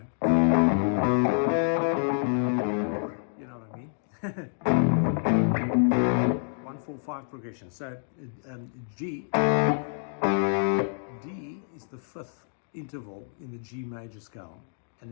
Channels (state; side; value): silent; right; digital silence